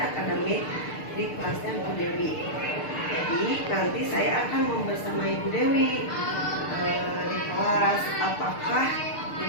di kelasnya Bu Dewi. Jadi nanti saya akan membersamai Bu Dewi di kelas. Apakah Bu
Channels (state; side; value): late; right; 6.6 ms